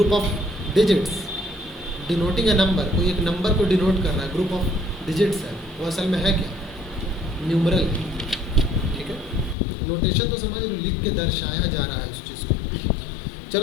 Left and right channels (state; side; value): drops out; right; at 9.6 s